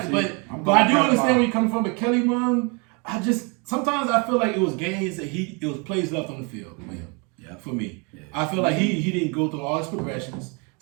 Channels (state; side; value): quieter; left; 32.3 dB